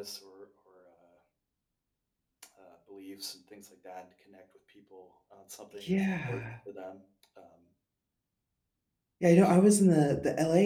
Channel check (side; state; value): both; identical; correlation 1.00